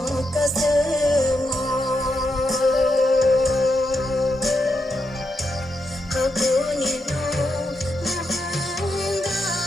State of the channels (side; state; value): both; normal; correlation 0.83